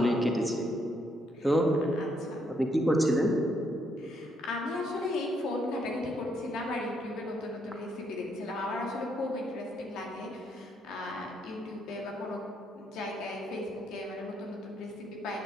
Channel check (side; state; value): both; normal; correlation 0.74